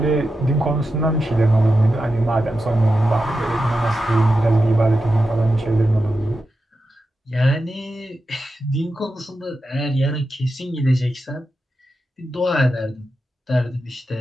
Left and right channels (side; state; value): both; normal; correlation 0.90